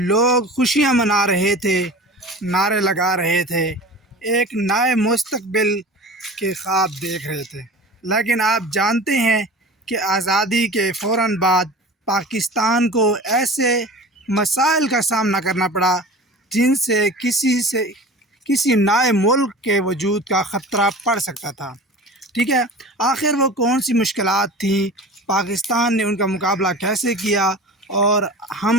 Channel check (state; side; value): normal; both; correlation 0.37